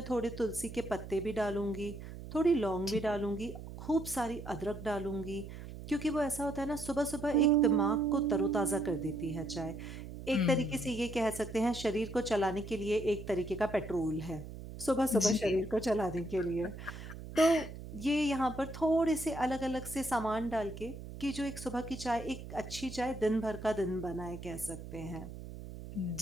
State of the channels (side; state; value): right; noise; hum, 11 dB below the sound